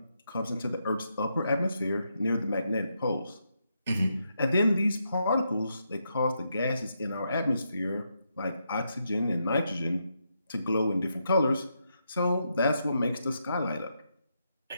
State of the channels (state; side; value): inverted; both; correlation -0.82